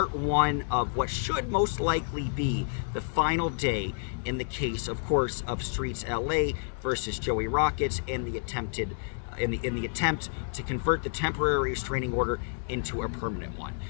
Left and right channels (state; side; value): silent; right; 58 dB below the other